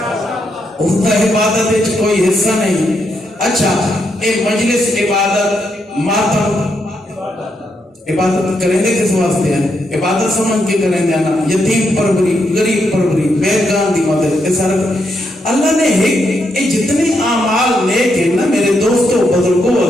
اس کا عبادت وچ کوئی حصہ نہیں اچھا اے مجلس عبادت ماتم عبادت کریں دے کس واسطے ہیں عبادت سمجھ کے کریں دے نا یتیم پروری غریب پروری بیگان دی مدد اے سارا اللہ نے اے جتنے اعمال نیک ہیں نا میرے دوستو بزرگوں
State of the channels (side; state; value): both; normal; correlation 0.80